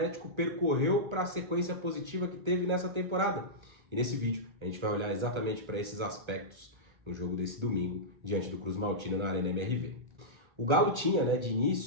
percorreu para a sequência positiva que teve nessa temporada. E nesse vídeo a gente vai olhar exatamente para esses aspectos no jogo desse domingo, diante do Cruz Maltino na Arena MRV. O Galo tinha, de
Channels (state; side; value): late; left; 1.3 ms